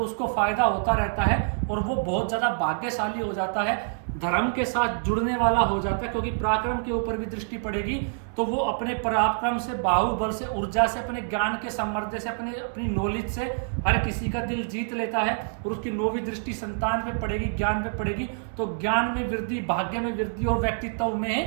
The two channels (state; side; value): silent; left; digital silence